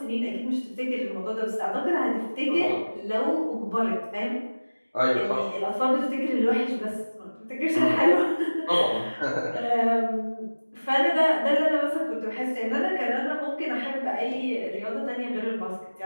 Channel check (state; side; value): inverted; both; correlation -1.00